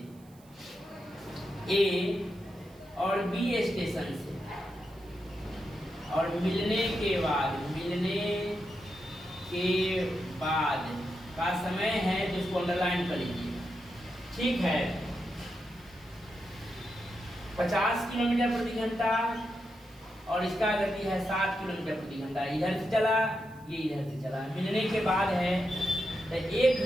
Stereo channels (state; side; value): noise; right; hiss, 28 dB below the sound